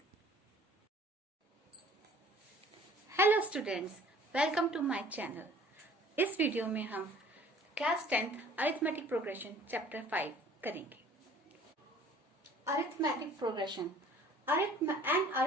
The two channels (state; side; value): normal; both; correlation 0.52